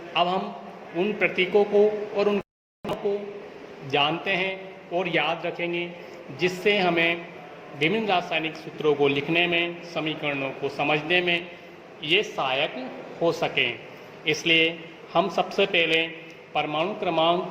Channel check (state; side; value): identical; both; correlation 1.00